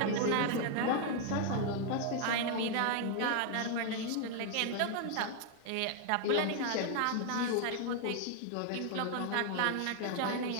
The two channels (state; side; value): different; both; correlation 0.00